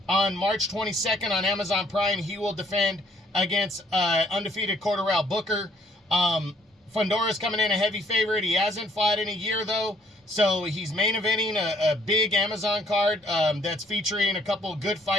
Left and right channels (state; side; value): normal; both; correlation 0.64